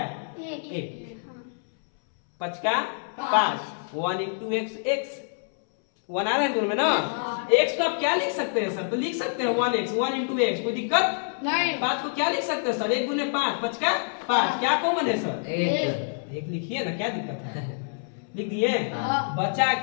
1। 5 का 5 1 into x 1 आ रहा है दोनों में ना। x को आप क्या लिख सकते हैं सर? तो लिख सकते हैं 1x 1 into x, कोई दिक्कत नहीं। 5 को क्या लिख सकते हैं सर? 1 गुने 5 5 का 5, क्या कॉमन है सर? 1 लिखिए ना, क्या दिक्कत है? लिख दिए। बचा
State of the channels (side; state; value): right; silent; 61 dB below the other